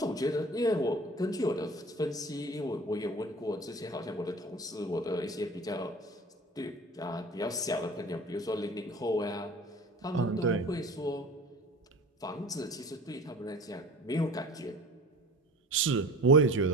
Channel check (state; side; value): normal; both; correlation 0.40